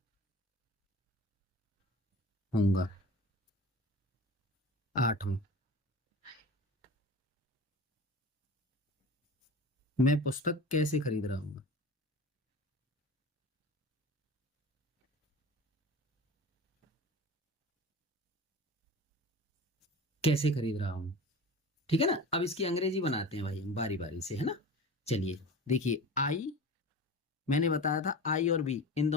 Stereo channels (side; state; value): both; normal; correlation 0.34